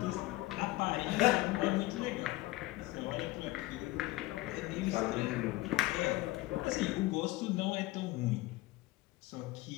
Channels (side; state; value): right; quieter; 19.0 dB